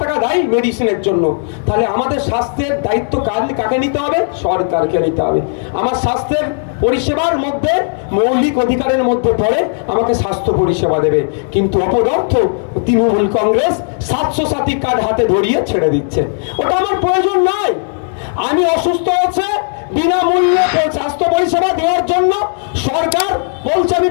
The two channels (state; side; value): silent; right; digital silence